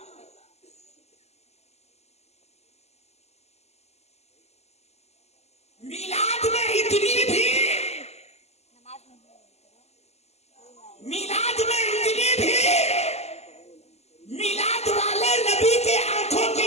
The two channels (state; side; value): late; right; 0.31 ms